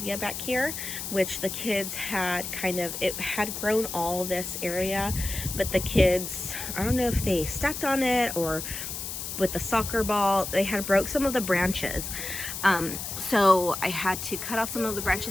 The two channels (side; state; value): left; noise; hiss, 6 dB below the sound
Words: back here, which the kids had it had grown all this area, but the kids, I don't know if they stepped on it or with the soccer ball, they had broke some of the branches. So I had to cut off some of the